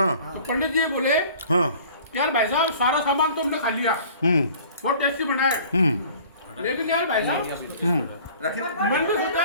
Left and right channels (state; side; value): inverted; both; correlation -0.49